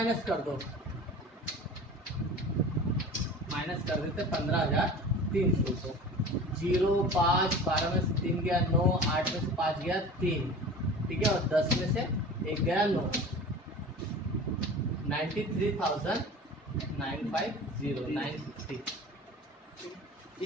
कर दो, माइनस कर देते 15,300 को। 0 5 12 में से 3 गया 9, 8 में से 5 गया 3, ठीक है, और 10 में से 1 गया 9, 93,950।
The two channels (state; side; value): normal; both; correlation 0.38